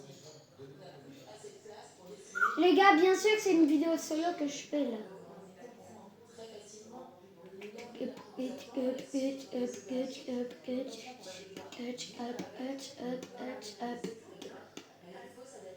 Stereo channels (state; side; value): identical; both; correlation 1.00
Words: On n'a plus assez de place pour destiner Les gars, bien sûr que c'est une vidéo solo que je fais là. très facilement il faut